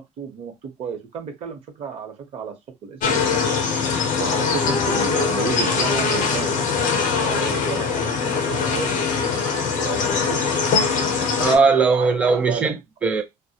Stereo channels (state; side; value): normal; both; correlation 0.31